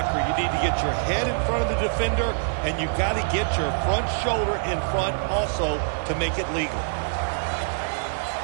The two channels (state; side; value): silent; left; digital silence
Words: you need to get your head in front of the defender, and you got to get your front shoulder in front also to make it legal.